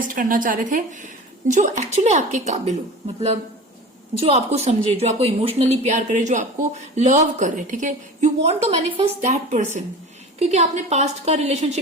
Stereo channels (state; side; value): normal; both; correlation 0.36